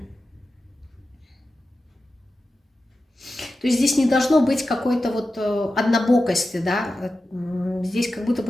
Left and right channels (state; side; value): normal; both; correlation 0.92